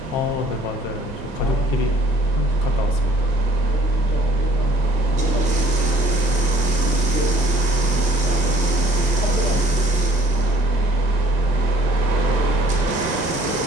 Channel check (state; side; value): normal; both; correlation 0.57